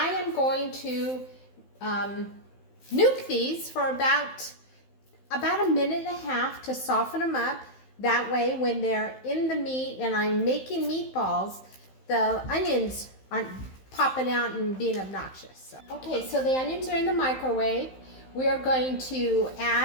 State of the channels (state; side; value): late; right; 15 ms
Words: am going to nuke these for about a minute and a half to soften them up. That way when they're in the meat and I'm making meatballs, the onions aren't popping out and being obnoxious. Okay, so the onions are in the microwave. We are going to